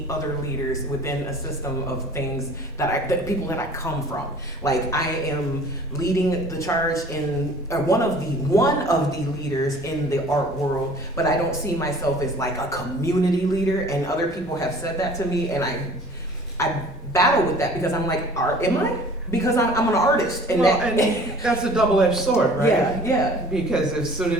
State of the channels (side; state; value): both; normal; correlation 0.48